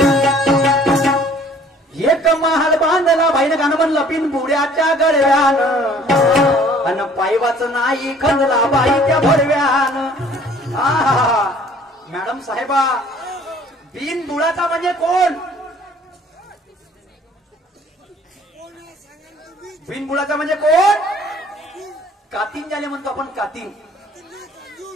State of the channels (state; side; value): normal; both; correlation 0.54